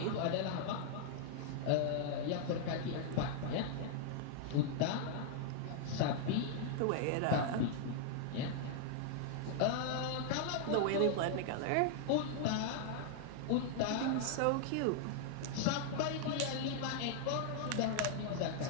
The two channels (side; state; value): both; different; correlation -0.01